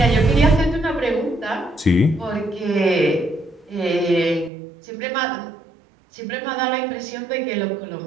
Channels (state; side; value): drops out; left; at 4.5 s